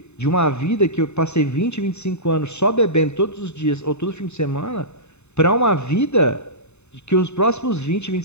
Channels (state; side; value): late; right; 0.82 ms